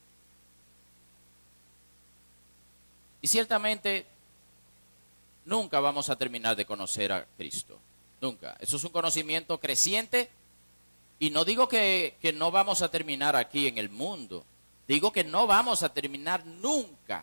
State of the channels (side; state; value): both; inverted; correlation -1.00